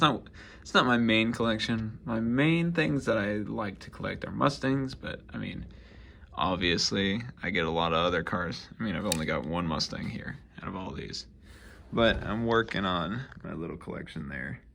not my main collection. My main things that I like to collect are Mustangs, but I mean, obviously, I get a lot of other cars. I mean, I've only got one Mustang here out of all these. But I'm working on my little collection there.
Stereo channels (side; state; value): both; identical; correlation 1.00